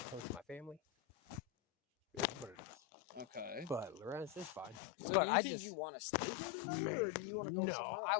to my family. It's what it is. Okay. But Lorenz is fine. So but do you I think just you want to stay here tonight, or do you want to go somewhere else? I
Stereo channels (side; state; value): right; drops out; at 4.8 s